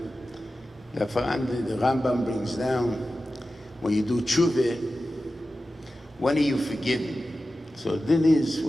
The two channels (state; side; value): normal; both; correlation 0.94